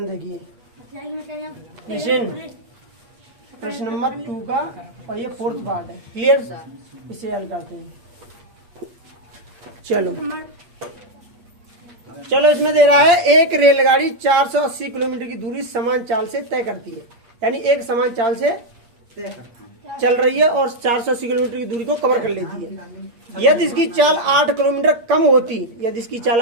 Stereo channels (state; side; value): late; left; 8.4 ms